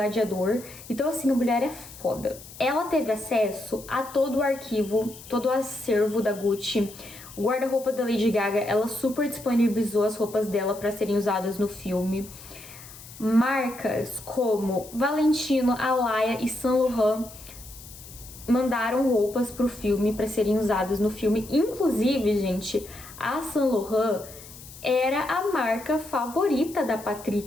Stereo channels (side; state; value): left; noise; hiss, 17 dB below the sound